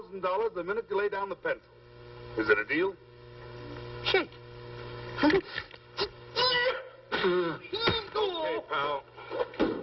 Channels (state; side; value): identical; both; correlation 1.00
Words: the minute you lay down the pencil. Is it a deal? Shake. Okay, pal.